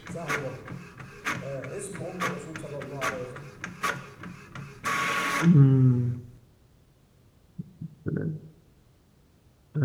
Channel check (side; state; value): both; identical; correlation 1.00